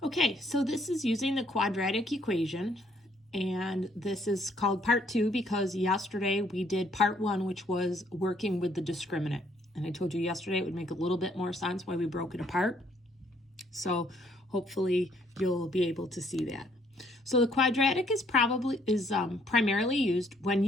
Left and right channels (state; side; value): normal; both; correlation 0.67